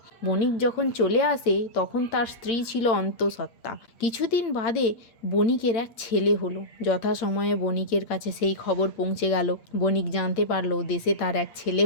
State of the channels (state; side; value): late; right; 8.6 ms